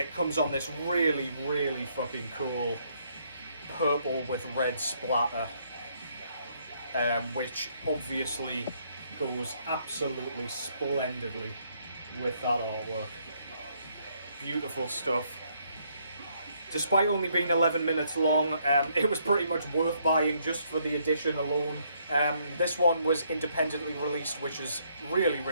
comes on this really, really fucking cool purple with red splatter. Which obviously goes absolutely splendidly with that artwork. Beautiful stuff. Despite only being 11 minutes long, it was pretty much worth buying just for the edition alone. This one was independently released, which is really,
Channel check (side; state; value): both; inverted; correlation -0.70